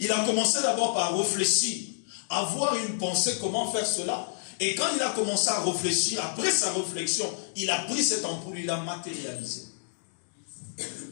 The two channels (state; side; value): silent; right; digital silence